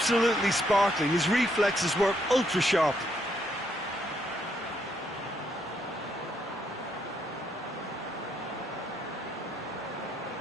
sparkling. His reflexes were ultra sharp.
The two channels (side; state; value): both; normal; correlation 0.74